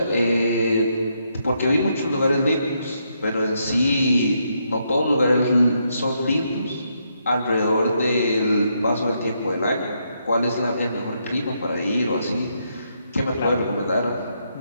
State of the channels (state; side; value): inverted; both; correlation -0.78